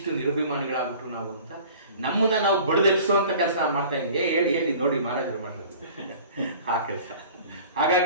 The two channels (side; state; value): both; inverted; correlation -0.45